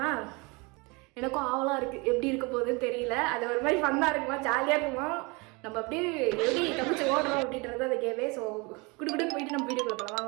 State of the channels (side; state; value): left; quieter; 27.8 dB